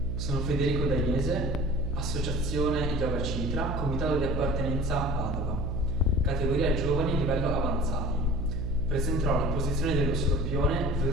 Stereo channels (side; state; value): right; noise; hum, 2 dB below the sound